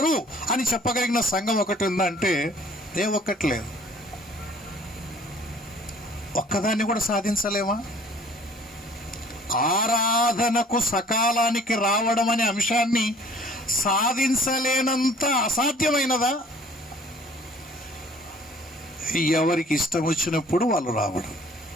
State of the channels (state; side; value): normal; both; correlation 0.54